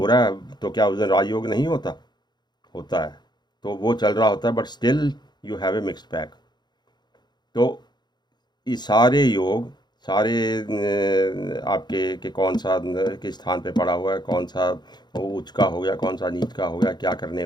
है तो क्या उस दिन राजयोग नहीं होता? होता है, तो वो चल रहा होता है, but still you have a mixed pack. तो ये सारे योग, सारे आपके के कौन सा किस स्थान पे पड़ा हुआ है, कौन सा वो उच्च का हो गया, कौन सा नीच का हो गया, क्या करने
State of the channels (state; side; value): late; right; 0.21 ms